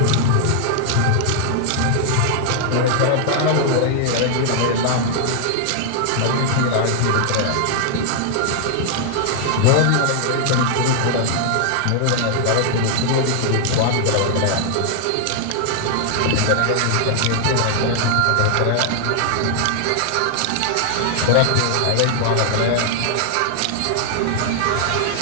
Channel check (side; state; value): both; different; correlation 0.00